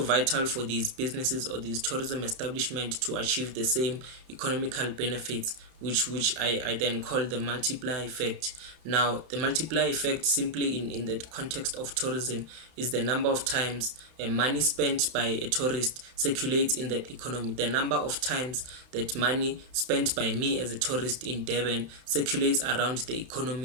vital for these businesses or these tourism establishments to achieve the same economical benefits, which I then call the multiplier effect. Now, the multiplier effect, simply in the context of tourism, is the number of times money spent by a tourist circulates in that economy. The number of times that money spent by me as a tourist in Durban circulates around the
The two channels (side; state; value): left; late; 31 ms